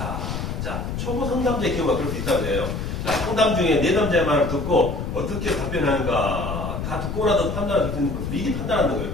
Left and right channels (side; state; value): left; noise; rumble, 4 dB below the sound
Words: 자, 초보 상담자의 경우가 그럴 수 있다고 해요. 자, 상담 중에 내담자의 말을 듣고 어떻게 답변하는가 다 듣고 나서 판단을 듣는 거 미리 판단하는 거예요.